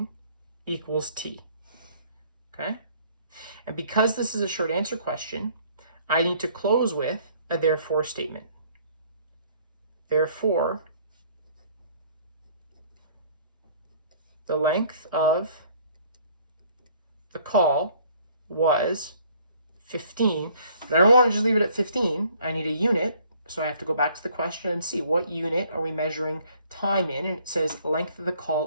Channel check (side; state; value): both; inverted; correlation -0.59